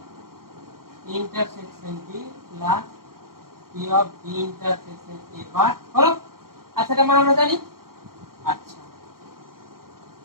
intersection B plus P of B intersection A বার হলো। আচ্ছা এটা মানে আমরা জানি। আচ্ছা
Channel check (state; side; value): late; left; 0.92 ms